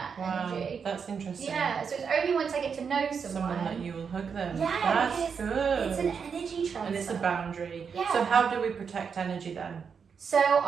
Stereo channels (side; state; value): left; quieter; 6.3 dB